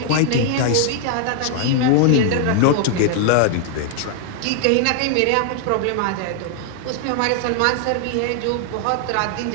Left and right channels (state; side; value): different; both; correlation 0.00